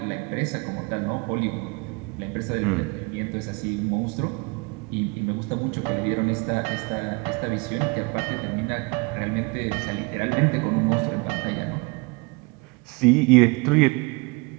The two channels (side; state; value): left; quieter; 28.9 dB